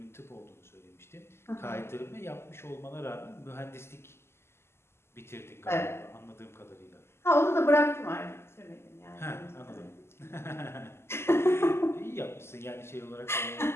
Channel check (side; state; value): right; late; 0.12 ms